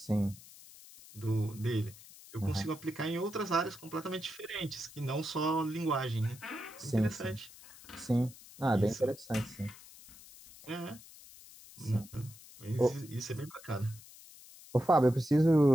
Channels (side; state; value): left; noise; hiss, 19 dB below the sound